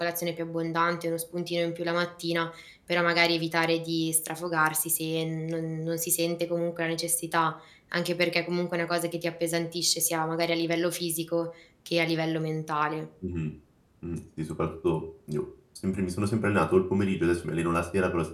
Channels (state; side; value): identical; both; correlation 1.00